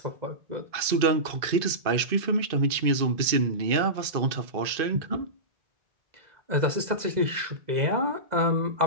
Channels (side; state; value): left; late; 2.5 ms